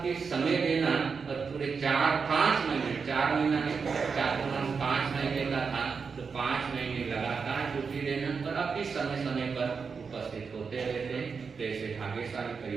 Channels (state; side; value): quieter; left; 5.5 dB